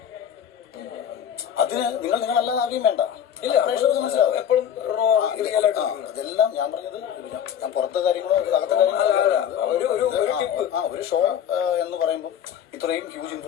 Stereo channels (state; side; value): quieter; right; 9.2 dB